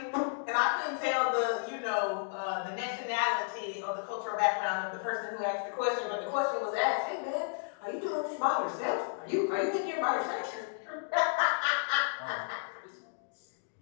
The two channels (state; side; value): silent; right; digital silence